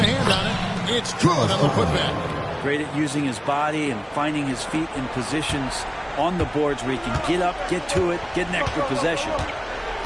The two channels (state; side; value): identical; both; correlation 1.00